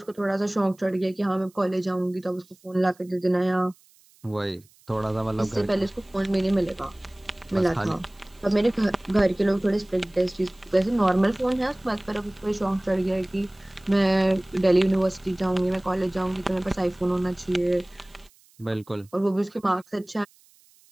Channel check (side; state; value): right; noise; hiss, 30 dB below the sound